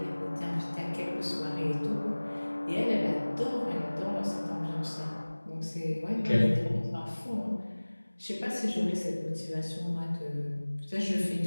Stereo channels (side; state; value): both; inverted; correlation -1.00